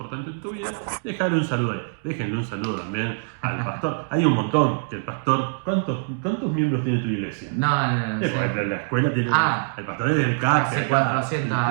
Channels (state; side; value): silent; left; digital silence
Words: en tu vida, dejarle un saludo ahí. Déjenle un saludo también al pastor. Hay un montón, que el pastor, ¿cuántos miembros tiene tu iglesia? No. La escuela tiene, el pastor es del CAC, hace 400